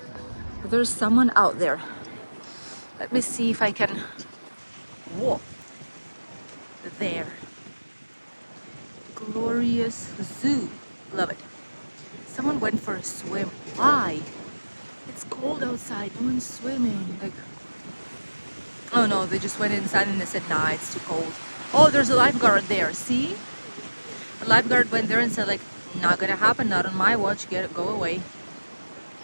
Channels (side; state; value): both; inverted; correlation -1.00